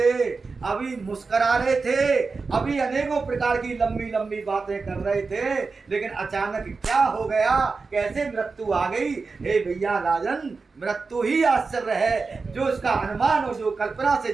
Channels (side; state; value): left; quieter; 4.4 dB